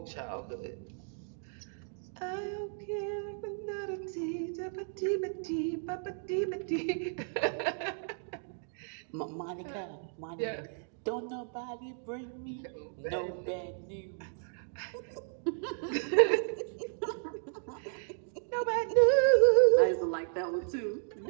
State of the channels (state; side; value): silent; left; digital silence